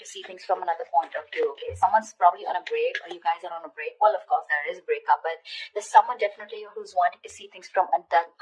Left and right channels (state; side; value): identical; both; correlation 1.00